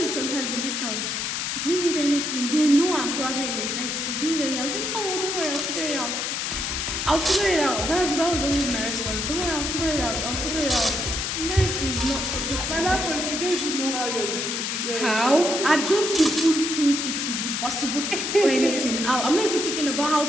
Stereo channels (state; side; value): noise; left; hiss, 1 dB below the sound